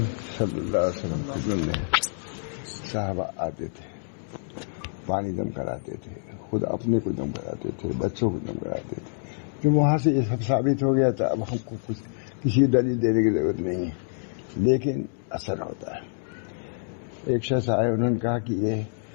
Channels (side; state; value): right; silent; digital silence